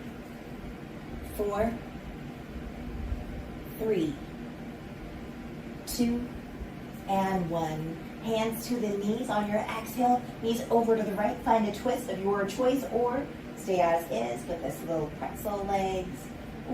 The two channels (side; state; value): both; identical; correlation 1.00